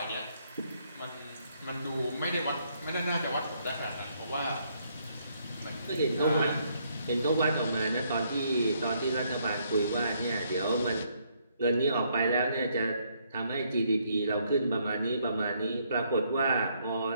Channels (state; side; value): inverted; both; correlation -0.71